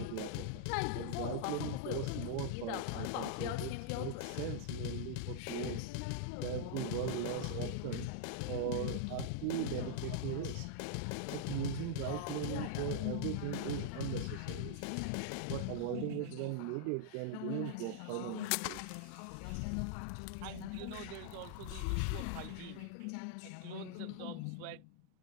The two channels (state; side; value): different; both; correlation -0.01